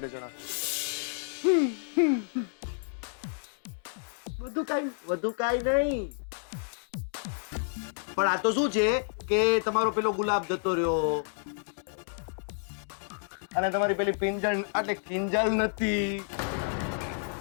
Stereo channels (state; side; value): silent; right; digital silence